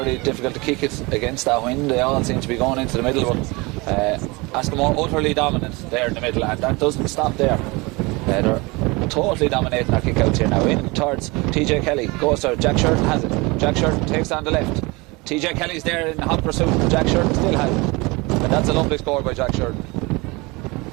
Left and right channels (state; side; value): quieter; left; 25.3 dB